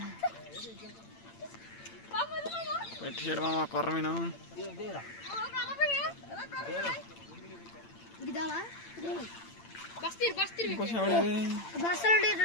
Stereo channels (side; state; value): right; late; 8.8 ms